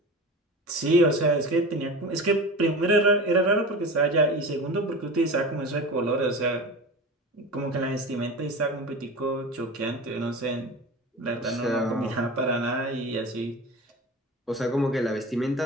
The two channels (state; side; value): normal; both; correlation 0.31